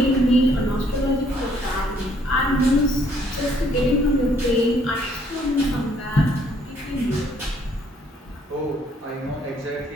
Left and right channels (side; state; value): both; normal; correlation 0.65